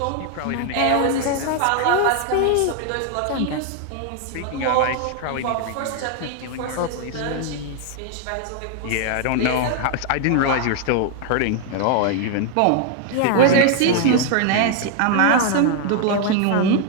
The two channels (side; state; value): both; different; correlation 0.00